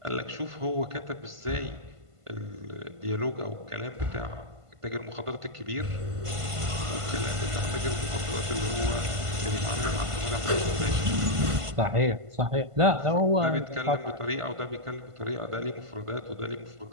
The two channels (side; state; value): left; late; 1.5 ms